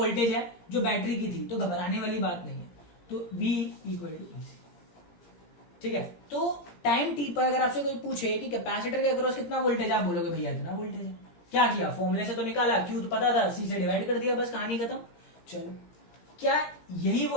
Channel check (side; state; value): right; late; 17 ms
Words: है जो बैटरी की थी, तो घबराने वाली बात नहीं है, तो V इक्वल टू ईसी, ठीक है। तो टाइम टी पर अगर आपसे कोई पूछे कि कैपेसिटर के अक्रॉस कितना वोल्टेज है, आप बोलोगे भैया इतना वोल्टेज है। क्या किया, फॉर्मूले से तो निकाला, क्यू तो पता था, सी से डिवाइड कर दिया, बस कहानी खत्म। चलो, क्या यही